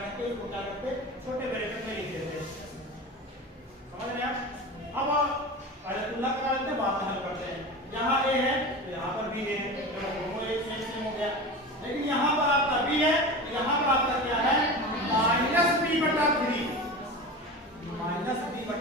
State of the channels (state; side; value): normal; both; correlation 0.30